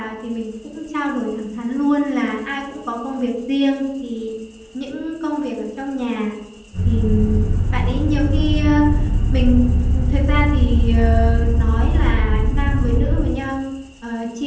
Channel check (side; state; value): both; identical; correlation 1.00